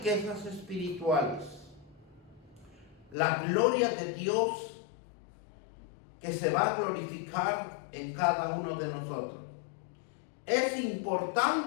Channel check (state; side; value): drops out; right; at 3.2 s